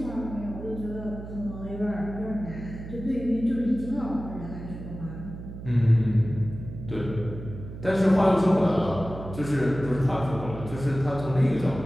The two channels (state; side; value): noise; right; hum, 11 dB below the sound